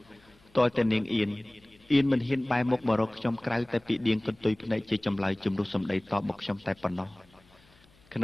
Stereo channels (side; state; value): left; noise; hum, 30 dB below the sound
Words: តើតែនាងអៀនមិនហ៊ានបែរមុខមករកខ្ញុំក្រៅតែពីដៀងកន្ទុយភ្នែកជាចម្លើយជំរុះសម្ដីតបមកខ្ញុំតែប៉ុណ្ណោះក្